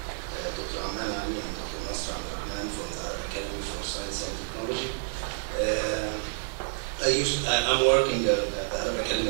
Dr. Ahmed and Dr. Nasr from the Arab Academy for Science and Technology. I'm working at the Arab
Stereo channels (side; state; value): left; silent; 59 dB below the other